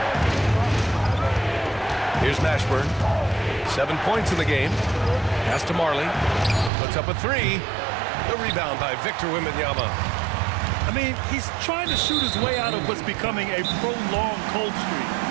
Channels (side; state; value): left; drops out; at 6.7 s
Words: Here's Mashburn. 7 points in the game. Pass to Marley. Puts up a three. The rebound by Victor Wembanyama. I mean, he's trying to shoot his way out of what's becoming a prolonged cold